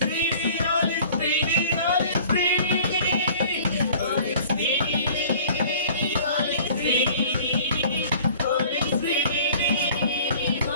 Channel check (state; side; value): inverted; both; correlation -0.49